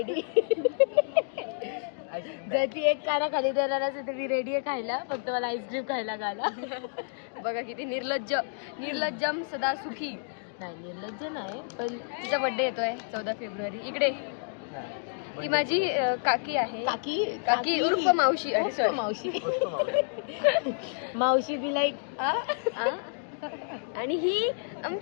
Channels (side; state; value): right; silent; digital silence